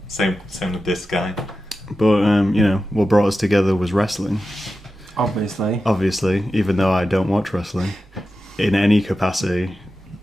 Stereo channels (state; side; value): normal; both; correlation 0.92